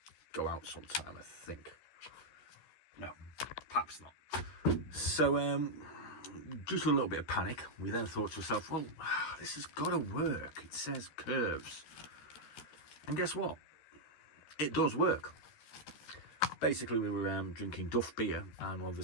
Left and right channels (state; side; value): late; right; 13 ms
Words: go out sometime, I think. No, perhaps not. So, due to a little bit of panic, we then thought to ourselves, well, this has got to work. It says curves. And guess what? It does work. Basically, we were drinking Duff beer, and